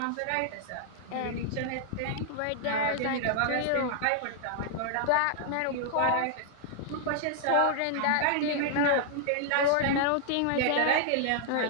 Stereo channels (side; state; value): both; different; correlation -0.01